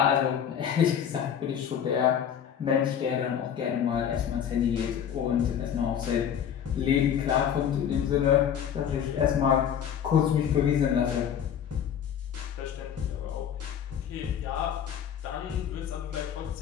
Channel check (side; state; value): right; quieter; 8.7 dB